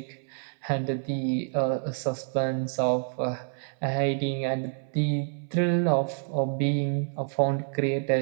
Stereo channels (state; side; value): silent; left; 59 dB below the other